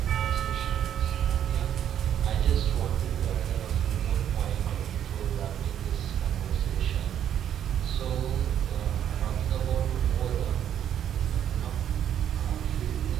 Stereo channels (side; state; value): left; quieter; 9.9 dB